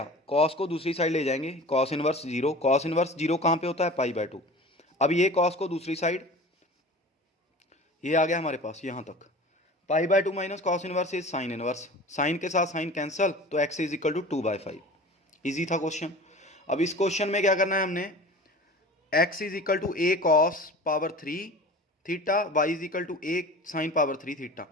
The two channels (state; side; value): normal; both; correlation 0.38